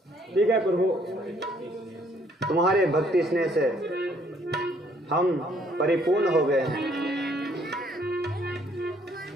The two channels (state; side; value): normal; both; correlation 0.64